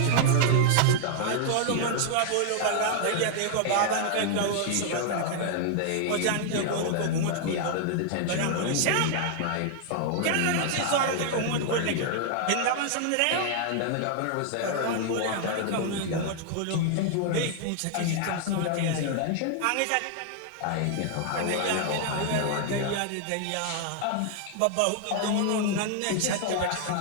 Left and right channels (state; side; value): different; both; correlation 0.00